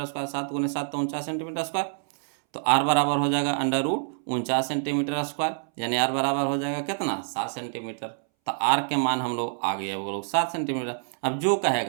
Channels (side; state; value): left; silent; 60 dB below the other